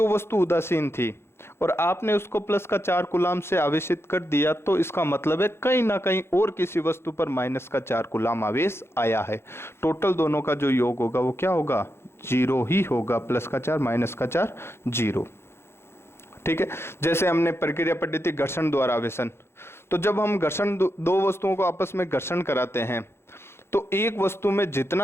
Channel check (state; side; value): late; right; 0.12 ms